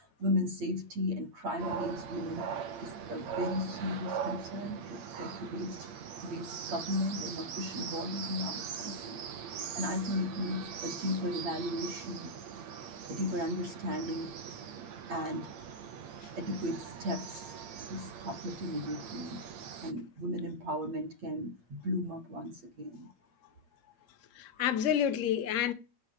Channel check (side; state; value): left; late; 8.7 ms